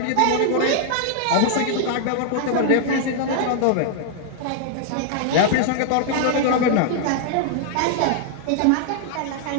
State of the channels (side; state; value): both; different; correlation 0.00